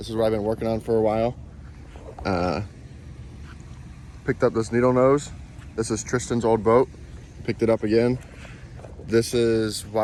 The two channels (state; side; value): identical; both; correlation 1.00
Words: is what I've been working on for a while. Picked up this needle nose. This is Tristan's old boat. Picked it up again. This is